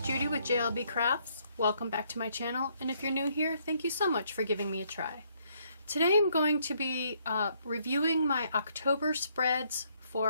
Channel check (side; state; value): both; inverted; correlation -0.70